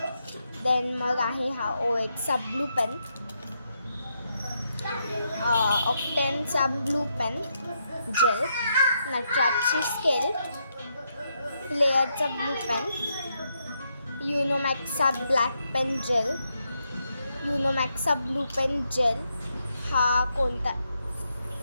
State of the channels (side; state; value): both; inverted; correlation -0.80